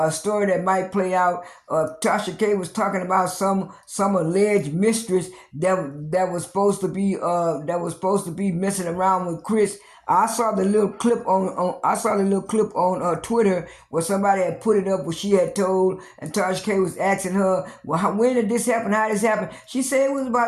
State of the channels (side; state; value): both; identical; correlation 1.00